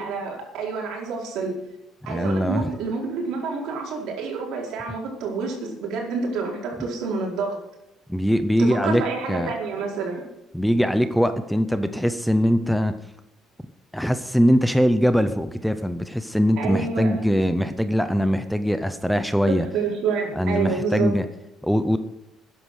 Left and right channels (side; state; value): both; normal; correlation 0.88